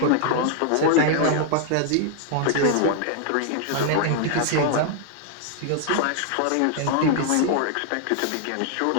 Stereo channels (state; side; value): different; both; correlation 0.00